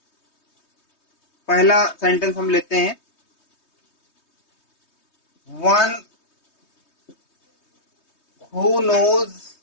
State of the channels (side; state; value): right; late; 3.2 ms